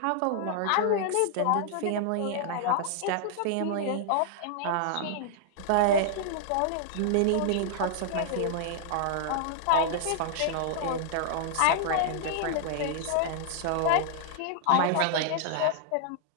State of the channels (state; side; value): different; both; correlation -0.01